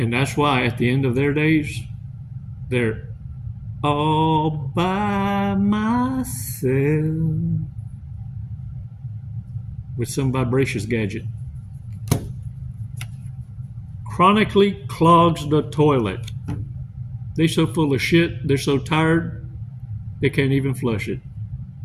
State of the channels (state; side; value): identical; both; correlation 1.00